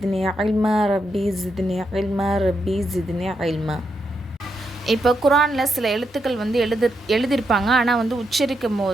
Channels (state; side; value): normal; both; correlation 0.82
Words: இல்மா ரப்பி ஜித்னி இல்மா ரப்பி ஜித்னி இல்மா. இப்போ குரானில் சில எழுத்துக்கள் வந்து எழுதியிருப்பாங்க, ஆனால் வந்து உச்சரிக்கும்